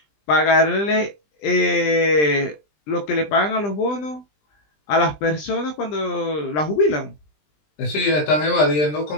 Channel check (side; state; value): right; late; 20 ms